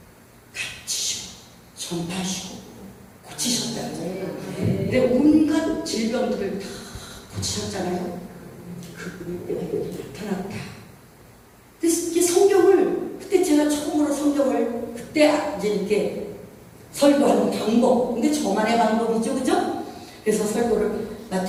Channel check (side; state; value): both; identical; correlation 1.00